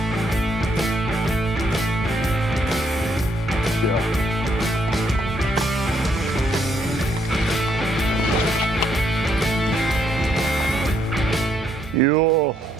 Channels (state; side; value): normal; both; correlation 0.73